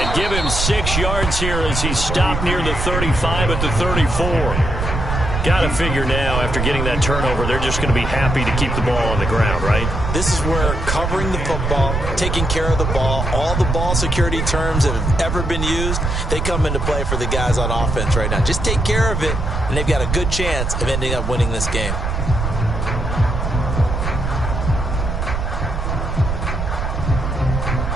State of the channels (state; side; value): noise; right; rumble, 2 dB below the sound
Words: give him 6 yards here as he stopped near the 35 at the 34. Got to figure now, after getting that turnover, they're just going to be happy to keep the ball on the ground, right? This is where covering the football, taking care of the ball, all the ball security terms that have ever been used, they come into play for the guys on offense right now. Just take care of it, and they've got a good chance of ending up winning this game.